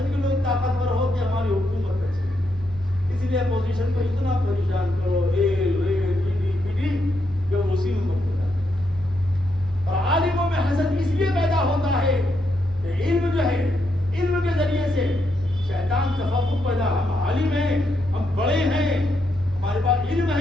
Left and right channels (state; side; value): noise; right; rumble, 18 dB below the sound